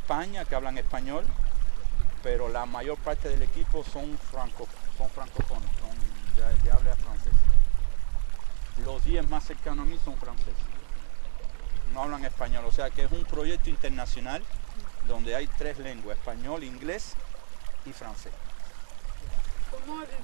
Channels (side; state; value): left; silent; 61 dB below the other